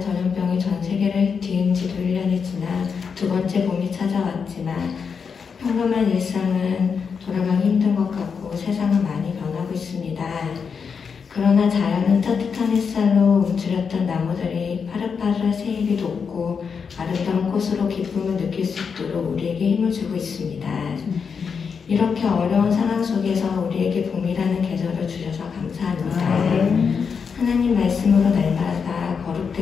전염병이 전 세계를 뒤흔 지도 1년이 지나 두 번째 봄이 찾아왔지만 평범한 일상은 돌아가기 힘든 것 같고 세상은 많이 변하고 있습니다. 그러나 자연은 따뜻한 햇살로 움츠렸던 나무들이 파릇파릇 새잎이 돋고 아름다운 꽃으로 기쁨을 느낄 수 있도록 우리에게 힘을 주고 있습니다. 이렇게 어려운 상황 속에서 우리에게 봄이라는 계절을 주셔서 감사합니다. 하나님 말씀으로 날마다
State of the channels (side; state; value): right; quieter; 6.0 dB